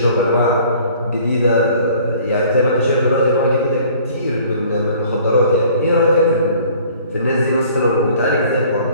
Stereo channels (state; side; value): inverted; both; correlation -0.53